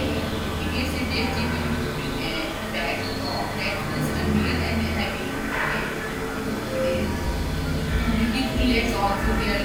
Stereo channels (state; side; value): identical; both; correlation 1.00